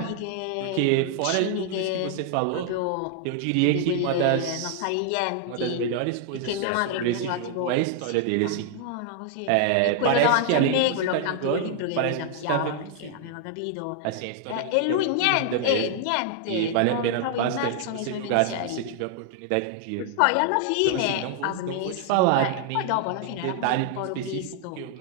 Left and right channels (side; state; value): both; different; correlation 0.00